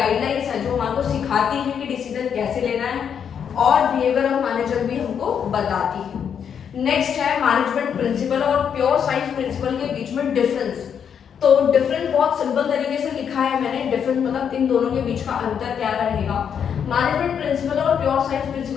है जो हमारे को सिखाती है कि डिसीजन कैसे लेना है, और बिहेवियर ऑफ मैनेजर भी हमको बताती है। नेक्स्ट है मैनेजमेंट प्रिंसिपल और प्योर साइंस प्रिंसिपल के बीच में डिफरेंस। तो डिफरेंस बहुत सिंपल तरीके से लिखा है मैंने। डिफरेंस मतलब इन दोनों के बीच का अंतर क्या रहेगा। मैनेजमेंट प्रिंसिपल और प्योर साइंस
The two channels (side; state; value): right; quieter; 7.8 dB